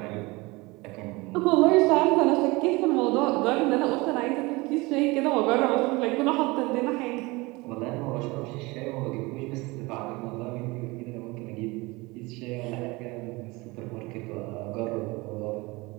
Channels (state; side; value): quieter; left; 23.6 dB